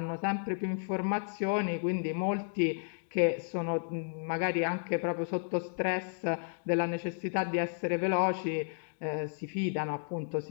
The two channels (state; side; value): silent; right; digital silence